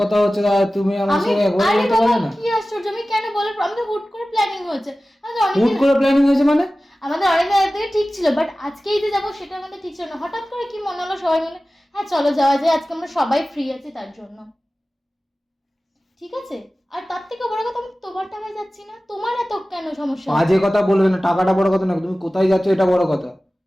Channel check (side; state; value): both; normal; correlation 0.96